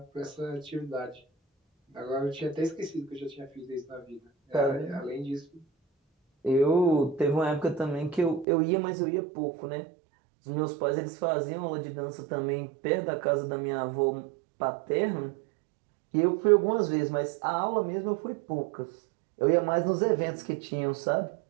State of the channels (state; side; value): drops out; left; at 8.5 s